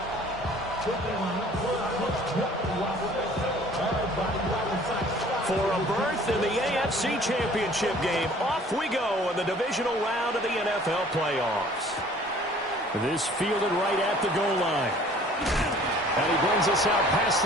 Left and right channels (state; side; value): normal; both; correlation 0.52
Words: For a berth in the AFC Championship game, off we go in the divisional round of the NFL playoffs. This fielded right at the goal line. And he brings us out past